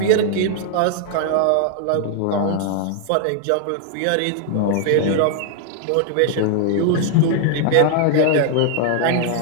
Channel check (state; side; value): different; both; correlation -0.01